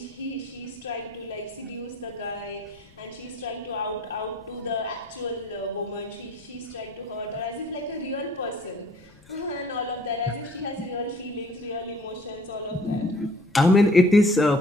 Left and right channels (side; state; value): left; noise; rumble, 27 dB below the sound